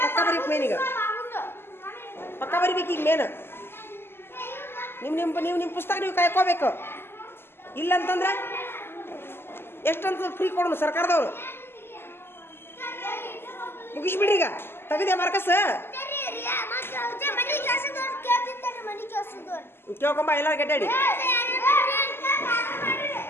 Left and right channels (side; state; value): right; late; 0.11 ms